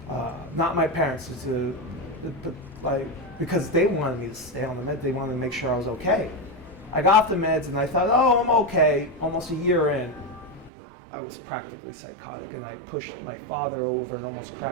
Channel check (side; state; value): left; drops out; at 10.7 s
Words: Not my parents, because they wanted me to stay on the med. They wanted to make sure I was okay. I got off the meds and I thought, oh, I'm okay. Almost a year in, I was practically psychotic, and I pushed my father over and almost